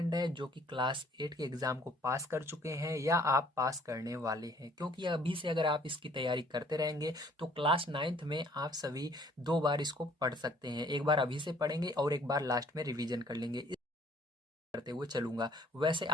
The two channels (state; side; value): normal; both; correlation 0.59